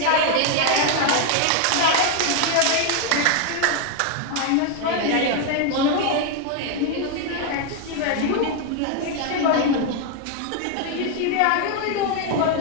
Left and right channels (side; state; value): both; different; correlation 0.01